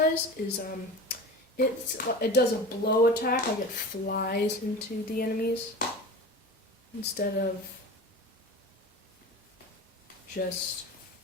is it does a blow attack, like it flies into the enemies instead of just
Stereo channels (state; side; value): normal; both; correlation 0.33